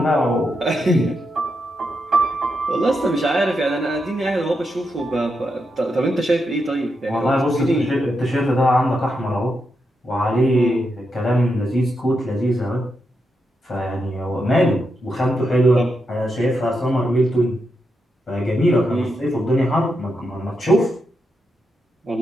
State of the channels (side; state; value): both; normal; correlation 0.84